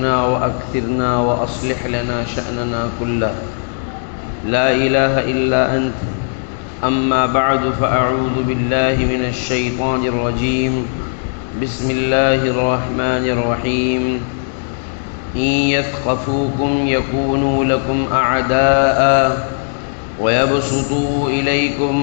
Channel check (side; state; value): right; silent; digital silence